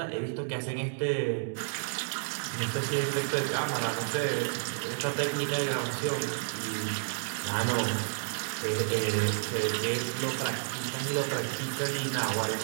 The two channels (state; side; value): silent; left; digital silence